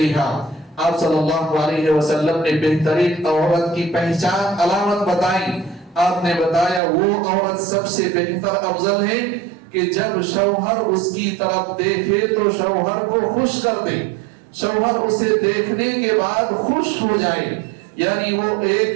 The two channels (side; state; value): left; drops out; at 6.8 s